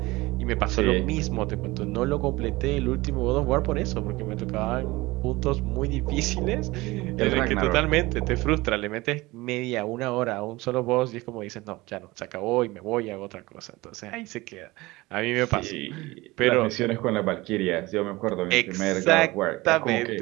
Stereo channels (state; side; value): quieter; left; 20.9 dB